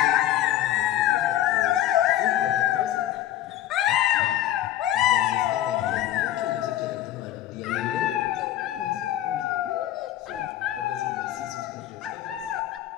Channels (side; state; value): right; quieter; 12.7 dB